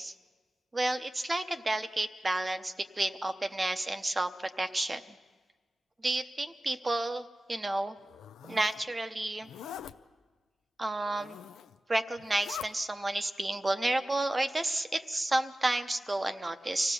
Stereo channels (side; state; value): both; normal; correlation 0.96